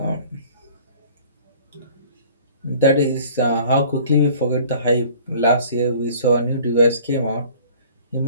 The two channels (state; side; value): inverted; both; correlation -0.50